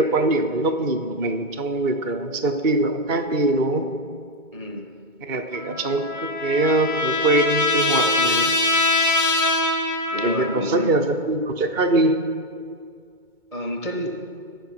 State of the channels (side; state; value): left; late; 2.2 ms